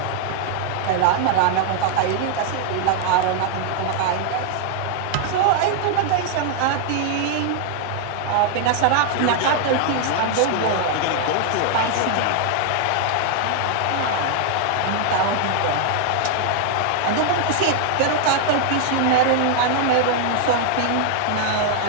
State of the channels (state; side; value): different; both; correlation 0.00